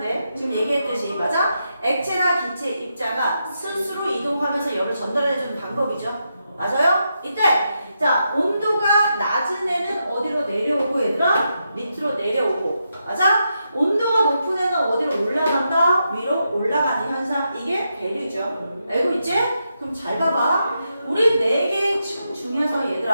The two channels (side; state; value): both; inverted; correlation -0.84